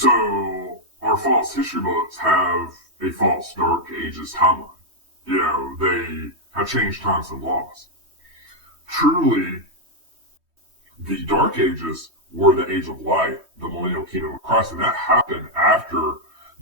our false history books have a false Dark Ages timeline. They have changed times and laws. Truly, the Dark Ages were the Age of Light, the millennial kingdom of Christ, and that happened after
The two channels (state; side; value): late; left; 3.2 ms